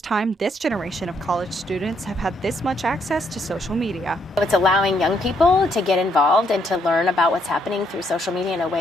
time this generation of college students have had this much access to social media. It's allowing young people to get involved and to learn about what's happening through social media in a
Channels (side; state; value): both; normal; correlation 0.73